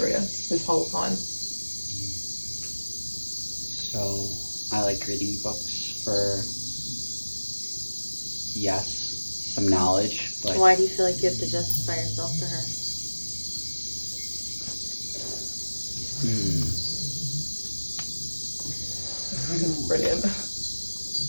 this whole time. So I like reading books for, yes, some knowledge, but Why do you feel like you have to justify yourself to her? Brilliant.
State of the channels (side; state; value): both; inverted; correlation -1.00